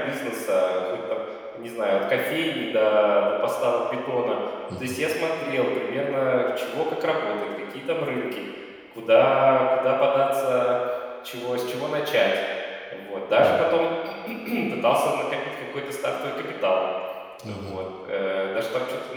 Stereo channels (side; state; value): both; identical; correlation 1.00